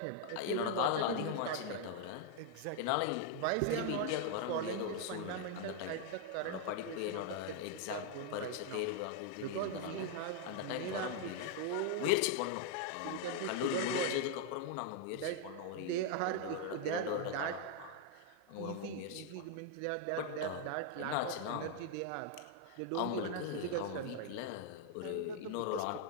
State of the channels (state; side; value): different; both; correlation 0.00